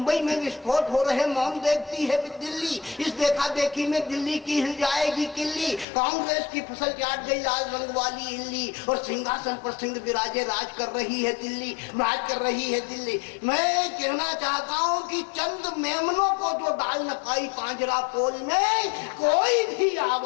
में विस्फोट हो रहे मौन देखती है दिल्ली, इस देखा देखी में दिल्ली की हिल जाएगी किल्ली, कांग्रेस की फसल चाट गई लाल रंग वाली इल्ली, और सिंहासन पर सिंह विराजे राज कर रही है दिल्ली, राज कर रही है दिल्ली। मैं कहना चाहता हूँ कि चंद मेमनों को जो डाल न पाई पांजरा पोल में, कोई भी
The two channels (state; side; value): drops out; right; at 5.9 s